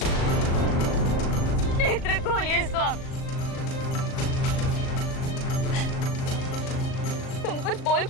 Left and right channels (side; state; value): right; late; 38 ms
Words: नेत्र खोलिए स्वामी। तुम कुछ बोल